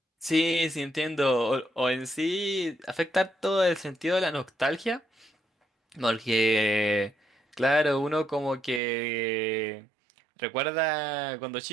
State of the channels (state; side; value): drops out; left; at 8.8 s